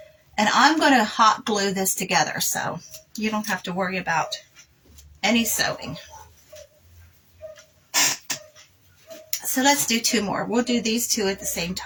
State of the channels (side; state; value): both; identical; correlation 1.00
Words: And I'm going to hot glue this together, so you don't have to worry about any sewing. So let's do 2 more. We'll do these 2 at the same